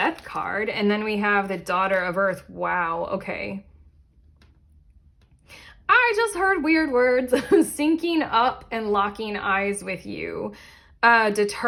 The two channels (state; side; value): identical; both; correlation 1.00